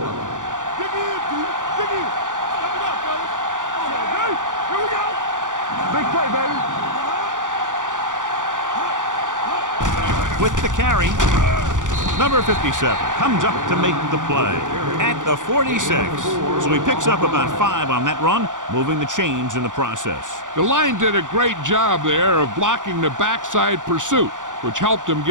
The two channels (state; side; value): late; left; 0.87 ms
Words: line. Dig in. Step it up, fellas. Hey, here we go. Big play, baby. With the carry, number 57 comes up to make the play at the 46. So he picks up about 5 on that run, moving the chains in the process. The line did a great job there of blocking the backside pursuit, which helped him